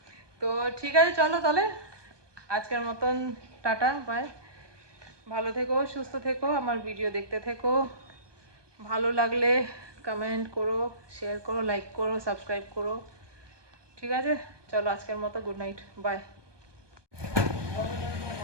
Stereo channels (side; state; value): left; late; 1.2 ms